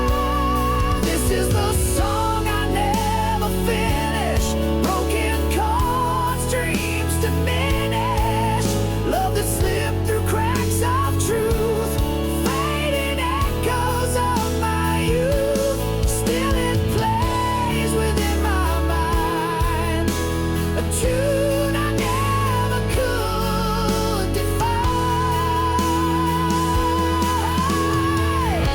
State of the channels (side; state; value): both; identical; correlation 1.00